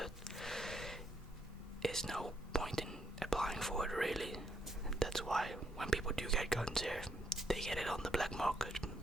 There's no point in applying for it really. That's why when people do get guns here, they get it on the black market.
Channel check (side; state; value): both; normal; correlation 0.75